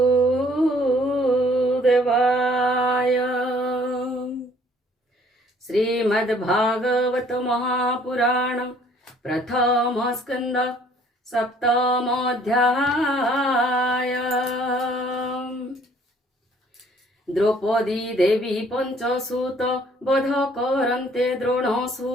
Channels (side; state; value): both; normal; correlation 0.59